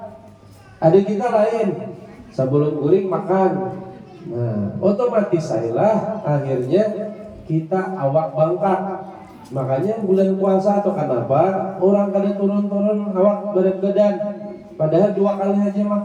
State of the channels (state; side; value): identical; both; correlation 1.00